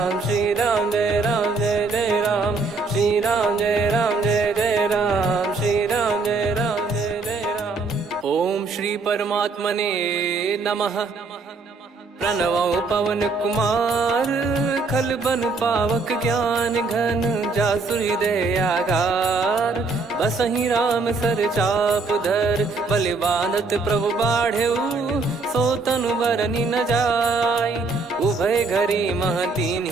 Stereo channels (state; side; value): quieter; left; 3.9 dB